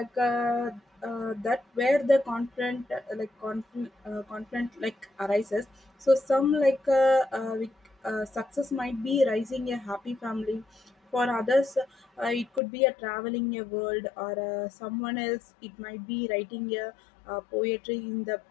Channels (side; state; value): right; drops out; at 12.6 s